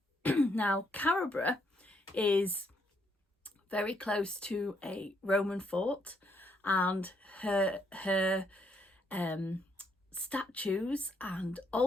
Now, Carabra is very close to a Roman fort, and her statues and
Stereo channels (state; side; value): normal; both; correlation 0.73